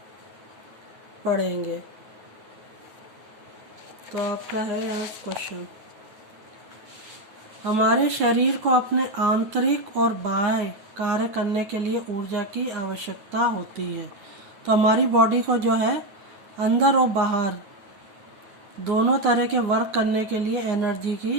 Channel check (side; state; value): left; late; 9.3 ms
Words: पढ़ेंगे। तो आपका है यहाँ क्वेश्चन। हमारे शरीर को अपने आंतरिक और बाह्य कार्य करने के लिए ऊर्जा की आवश्यकता होती है। तो हमारी बॉडी को जो है अंदर और बाहर दोनों तरह के वर्क करने के लिए एनर्जी